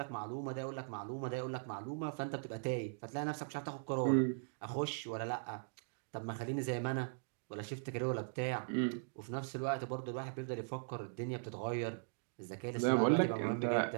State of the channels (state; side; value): silent; left; digital silence